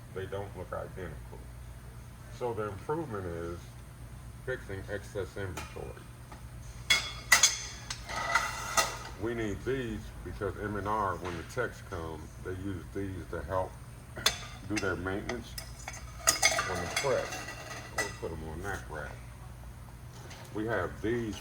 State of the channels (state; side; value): identical; both; correlation 1.00